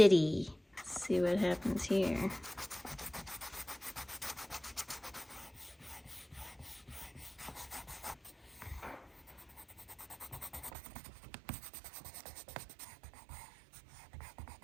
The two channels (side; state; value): left; drops out; at 10.7 s